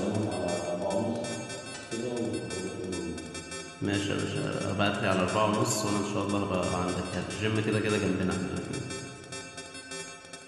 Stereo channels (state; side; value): identical; both; correlation 1.00